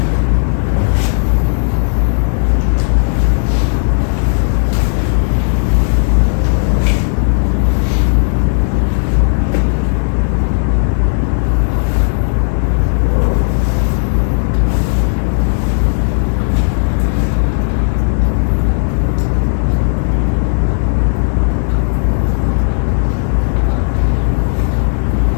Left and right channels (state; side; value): silent; right; 71 dB below the other